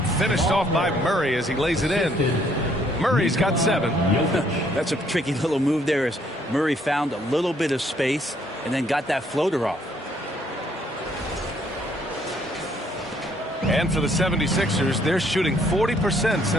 finished off by Murray as he lays it in. Murray's got 7. That's a tricky little move there as Murray found a little bit of space and then got that floater off. And for the 76ers, they're shooting 40%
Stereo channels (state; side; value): normal; both; correlation 0.66